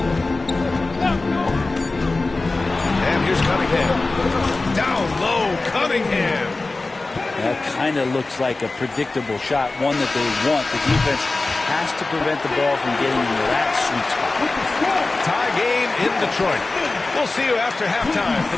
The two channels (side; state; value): right; quieter; 3.3 dB